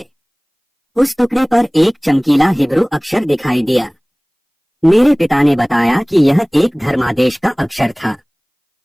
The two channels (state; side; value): identical; both; correlation 1.00